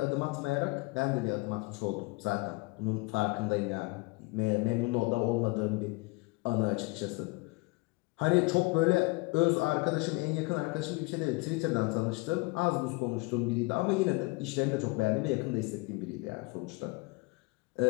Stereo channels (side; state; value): right; quieter; 25.7 dB